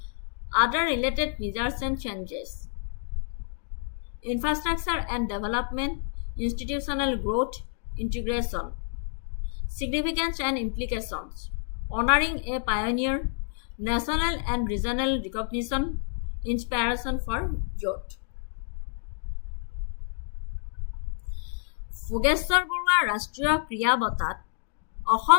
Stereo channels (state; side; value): silent; right; digital silence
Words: Other related measures and changes. Infrastructure and development, institutional growth, integration. Significance and implications. Honoring a pioneer, national and regional recognition, inspiration for youth. Bhogeshwar Barua ৰাষ্ট্ৰীয় ক্ৰীড়া বঁটাত